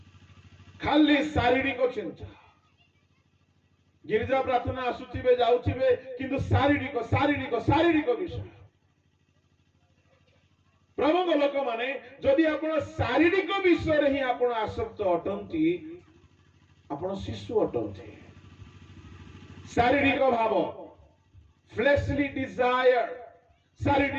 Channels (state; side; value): identical; both; correlation 1.00